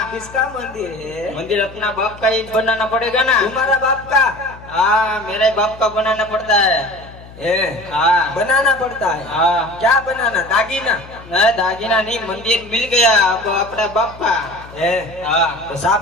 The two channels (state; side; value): noise; left; hum, 19 dB below the sound